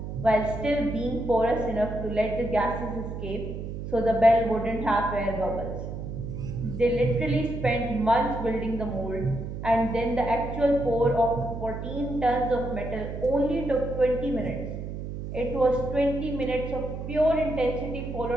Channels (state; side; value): noise; right; hum, 7 dB below the sound